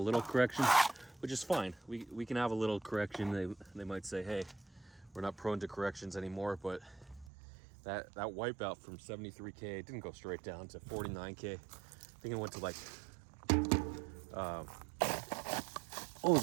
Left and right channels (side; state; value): left; drops out; at 7.3 s